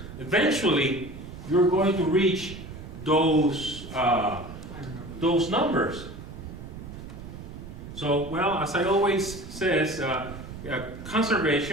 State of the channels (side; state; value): right; noise; rumble, 12 dB below the sound